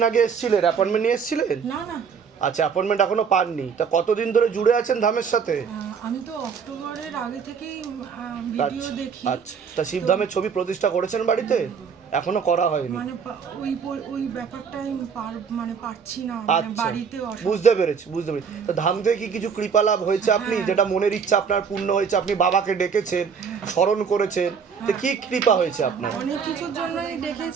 আগে এসেছিলেন? অ্যাপয়েন্টমেন্ট নিয়ে এসেছিলেন? না না, আচ্ছা, অ্যাপয়েন্টমেন্ট এখনো পাননি। তা কতদিন ধরে জুড়ে আছেন ধামের সাথে? আমি তো অক্টোবরের আগে থেকেই ভিডিও আচ্ছা দেখি। আচ্ছা, তা শিবধামের ছবি প্রতিষ্ঠা করেছেন বাড়িতে? এখনো করা হয়নি। মানে ওই ব্যাপারটাই পারছি না, আচ্ছা, বুঝতে পেরেছি। তো ধাম থেকে কি কিছু কৃপা লাভ হয়েছে আপনি, যেটা মনের ইচ্ছা আপনার পূর্ণ হয়েছে? আপনি বাবাকে ডেকেছেন, স্মরণ করেছেন, তো কি কৃপা হয়েছে আপনার? অনেক কিছুর জন্যই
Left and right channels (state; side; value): quieter; left; 6.4 dB